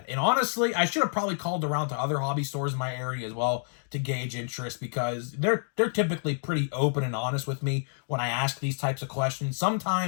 And honestly, I should have probably called around to other hobby stores in my area as well to gauge interest, because they're typically pretty open and honest with me when I ask these types of questions.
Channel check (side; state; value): right; silent; digital silence